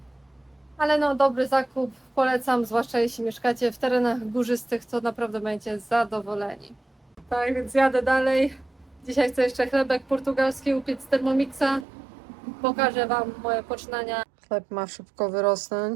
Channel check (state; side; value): drops out; left; at 11.9 s